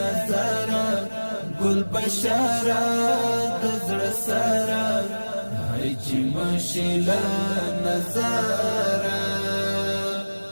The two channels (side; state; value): both; inverted; correlation -1.00